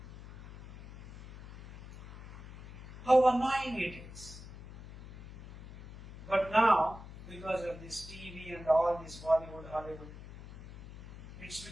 How annoying it is. But now, because of this TV and all this Bollywood, Hollywood, it's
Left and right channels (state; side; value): noise; left; hum, 14 dB below the sound